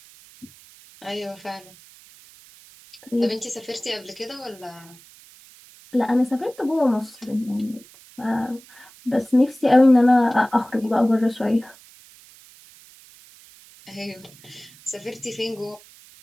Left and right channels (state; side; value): noise; right; hiss, 23 dB below the sound